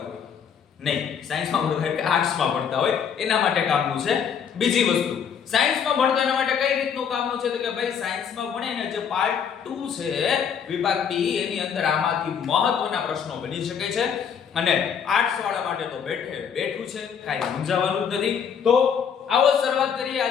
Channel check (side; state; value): right; quieter; 7.5 dB